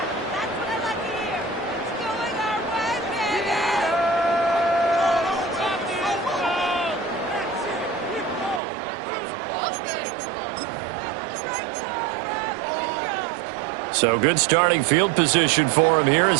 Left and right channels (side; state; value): left; drops out; at 8.6 s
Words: So good starting field position for him here